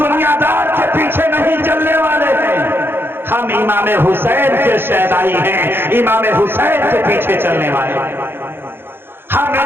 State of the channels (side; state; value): left; late; 0.10 ms